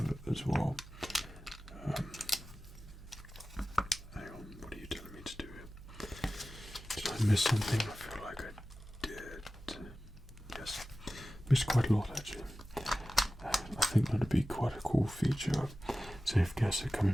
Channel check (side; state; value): both; normal; correlation 0.95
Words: as well. Hang on, what are you telling me to do here? Did I miss something? I feel like I did. Yes, missed quite a lot actually. I think that'd be quite a cool feature. So if guests are